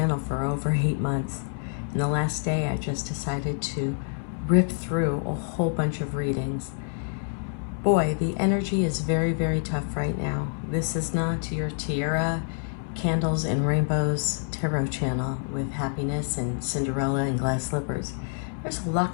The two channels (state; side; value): silent; right; 60 dB below the other